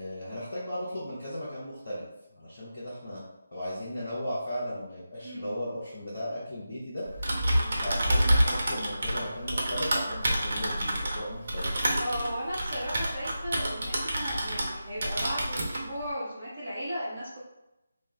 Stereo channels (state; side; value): inverted; both; correlation -0.91